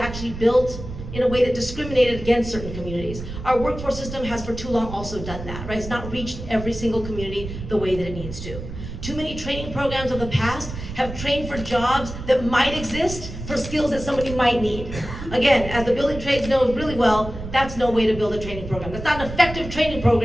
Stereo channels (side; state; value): right; noise; rumble, 10 dB below the sound